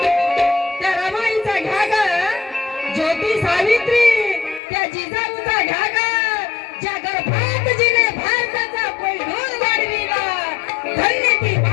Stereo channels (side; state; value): right; drops out; at 4.6 s